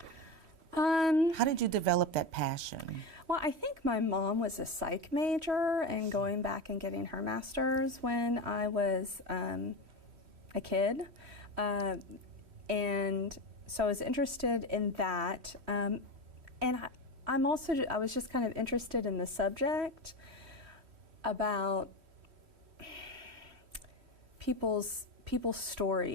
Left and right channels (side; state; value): left; late; 3.1 ms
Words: How did you develop that passion? Well, I think my mom was a psych major and going back and getting her master's when I was a kid. And so I was interested in that. And I was just kind of interested in the subject about people's